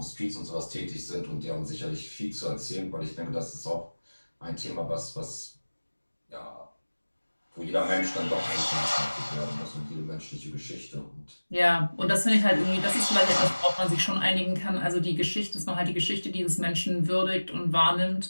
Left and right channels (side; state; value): both; inverted; correlation -1.00